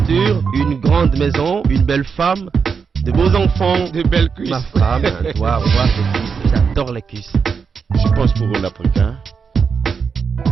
une grande maison, une belle femme, de beaux enfants, de belles cuisses. Ma femme doit avoir des cuisses. J'adore les cuisses. Je pense pour un Africain,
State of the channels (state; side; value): quieter; left; 5.8 dB